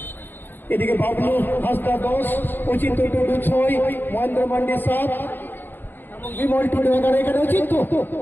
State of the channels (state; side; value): late; right; 0.094 ms